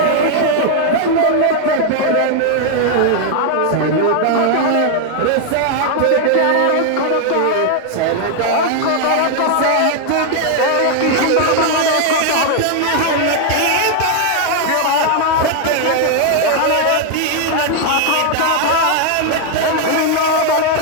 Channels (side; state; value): both; different; correlation 0.00